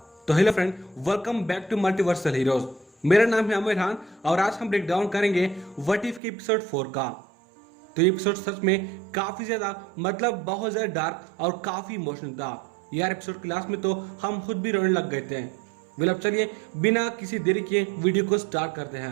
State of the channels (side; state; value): left; drops out; at 6.2 s